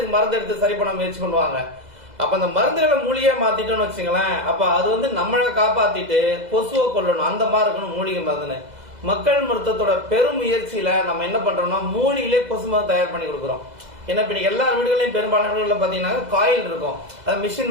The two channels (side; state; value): left; late; 2.0 ms